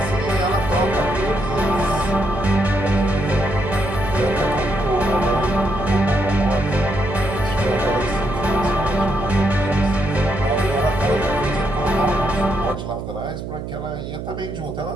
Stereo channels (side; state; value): right; noise; hum, 7 dB below the sound